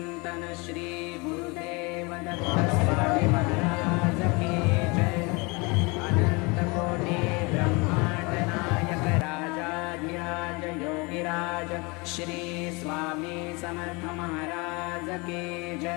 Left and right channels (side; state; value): right; quieter; 27.6 dB